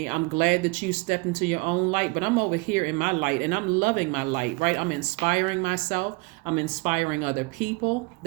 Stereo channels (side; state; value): left; quieter; 26.7 dB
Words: I'm glad that you stepped into your own light, but I'm over here in my light and I'm loving my light, right? I'm inspiring myself. I'm inspiring other people.